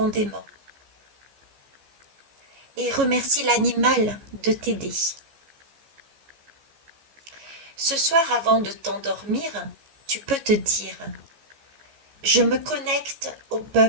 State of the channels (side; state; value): left; late; 14 ms